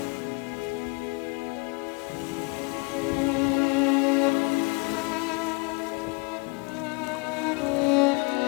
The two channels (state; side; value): quieter; right; 29.4 dB